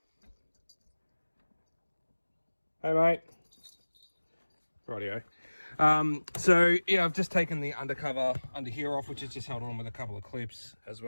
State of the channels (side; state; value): both; inverted; correlation -1.00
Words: Hey mate. Rightio. So yeah, I've just taken the undercover under here off, which is just held on with a couple of clips, as